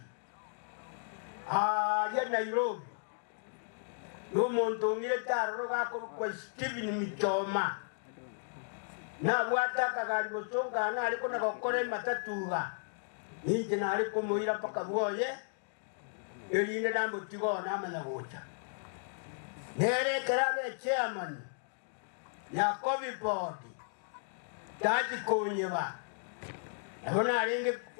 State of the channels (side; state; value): right; silent; digital silence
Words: ya Nairobi n'omuntu ngire taroro gakorwa Stephen Mitoma na bwata kagari bosonga na aliko na gokore matatuga ninje na aliko muira paka bwoye elinde nambo tigo na amana gocha nere karabe chairman ya COVID board taji konyeba abona alinge